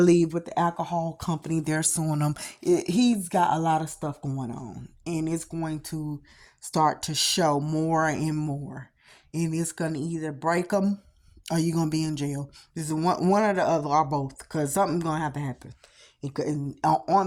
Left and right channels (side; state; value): both; identical; correlation 1.00